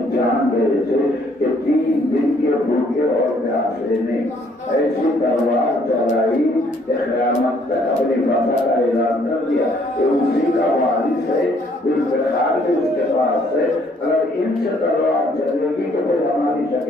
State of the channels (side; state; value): both; normal; correlation 0.64